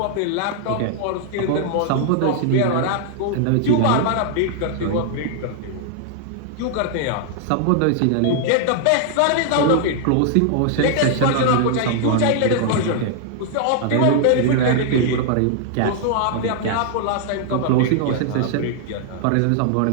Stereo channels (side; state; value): both; different; correlation -0.01